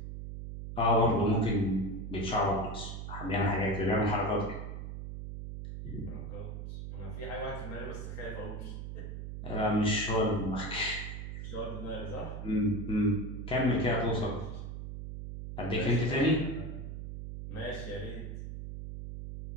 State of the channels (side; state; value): right; noise; hum, 7 dB below the sound